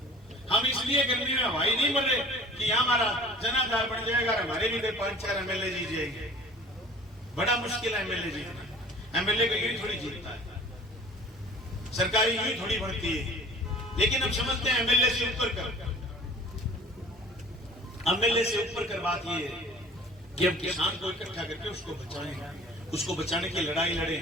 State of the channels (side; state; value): both; normal; correlation 0.46